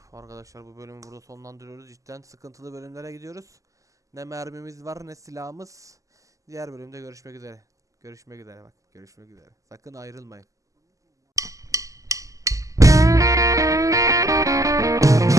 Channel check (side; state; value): left; late; 0.16 ms